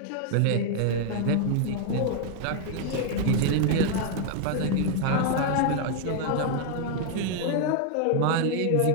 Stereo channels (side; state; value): both; different; correlation 0.00